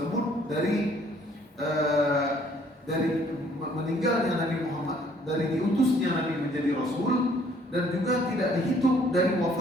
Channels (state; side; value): normal; both; correlation 0.62